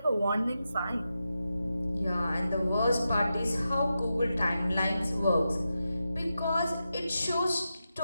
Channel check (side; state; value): both; inverted; correlation -0.89